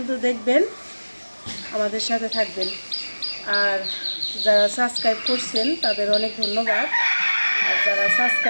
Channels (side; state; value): both; inverted; correlation -1.00